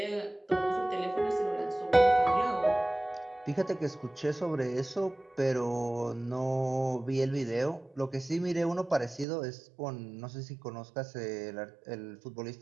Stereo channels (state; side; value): drops out; left; at 9.2 s